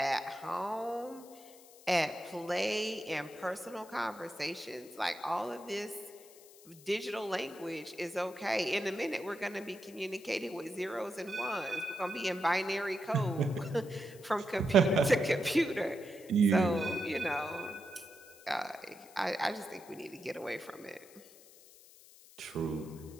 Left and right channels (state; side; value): noise; left; hiss, 22 dB below the sound